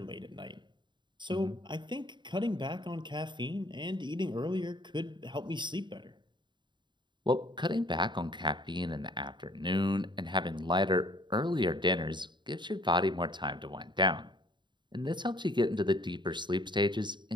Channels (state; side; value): late; left; 0.22 ms